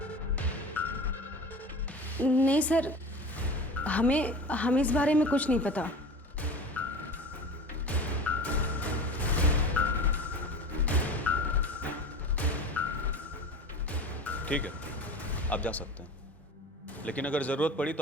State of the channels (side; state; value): both; normal; correlation 0.35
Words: नहीं सर, हमें इस बारे में कुछ नहीं पता। ठीक है, आप जा सकते हैं, लेकिन अगर जरूरत पड़ी